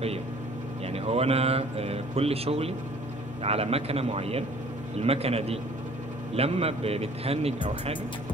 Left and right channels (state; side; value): normal; both; correlation 0.53